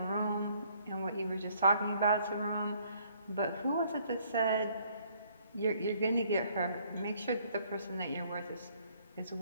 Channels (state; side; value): inverted; both; correlation -0.64